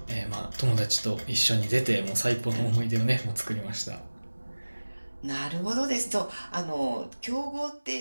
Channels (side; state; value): both; inverted; correlation -1.00